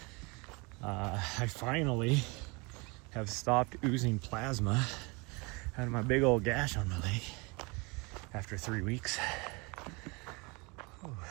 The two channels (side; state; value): left; quieter; 28.2 dB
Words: I finally have stopped oozing plasma out of my big old gash on my leg after 3 weeks. Ooh.